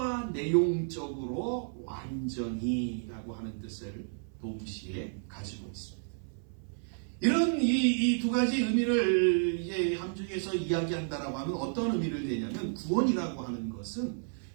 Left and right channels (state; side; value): silent; left; 57 dB below the other